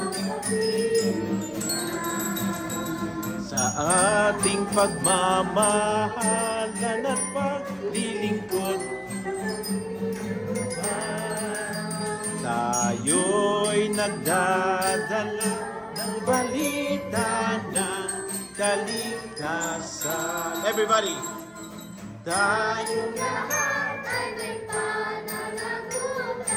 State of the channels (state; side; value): identical; both; correlation 1.00